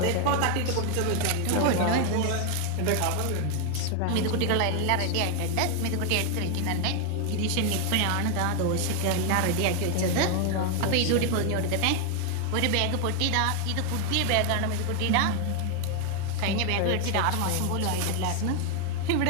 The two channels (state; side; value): different; both; correlation 0.00